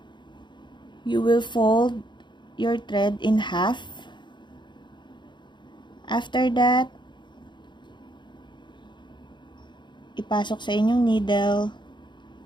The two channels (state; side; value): late; right; 0.22 ms